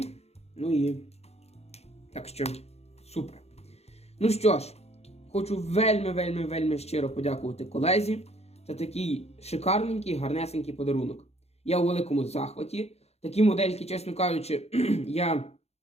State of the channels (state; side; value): late; right; 0.31 ms